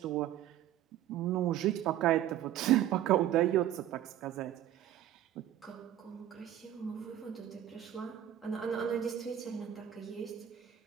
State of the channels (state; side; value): quieter; left; 11.8 dB